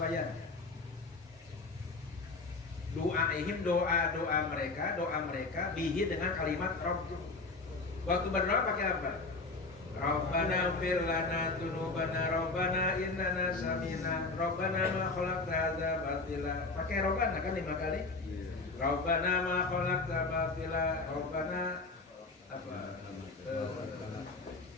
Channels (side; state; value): right; quieter; 3.6 dB